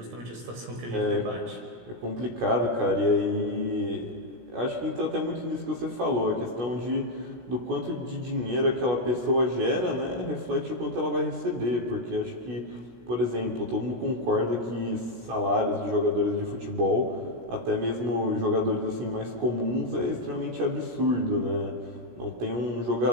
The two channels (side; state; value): left; late; 16 ms